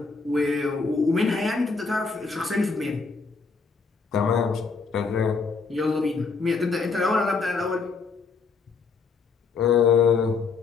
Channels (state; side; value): quieter; right; 4.7 dB